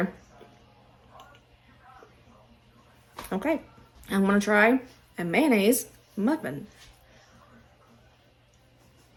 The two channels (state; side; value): identical; both; correlation 1.00